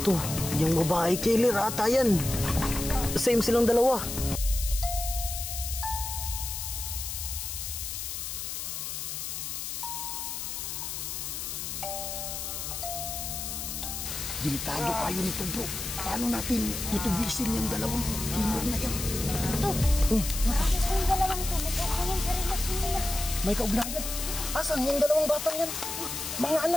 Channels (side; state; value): left; noise; hiss, 5 dB below the sound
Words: To, yung babae killer ata yan. Same silang dalawa. Delikado kayo nito bro. Paano natin tutubisin yung dalawang killer na yan? Ito. Nakakit ko yung dalawang to. Nagkakaroon sa relasyon nila. May kaugnayan. Asan yung dalawang batang yan? Mga